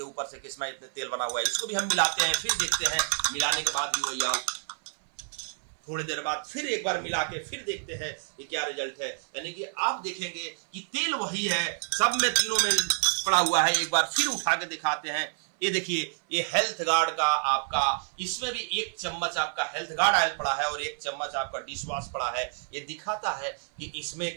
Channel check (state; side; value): silent; left; 59 dB below the other